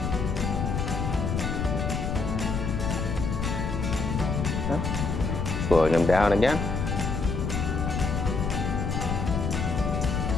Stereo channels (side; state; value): left; noise; rumble, 1 dB below the sound